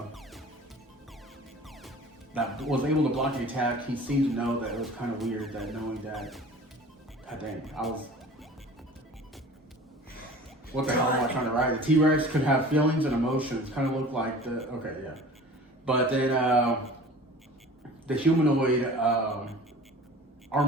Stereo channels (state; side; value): normal; both; correlation 0.42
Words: that was able to block the attack. He seemed to know that it was kind of weird that knowing that, god dang, what the hell am I trying to write? The T-Rex could have feelings and emotions, kind of looked like But then the humanoid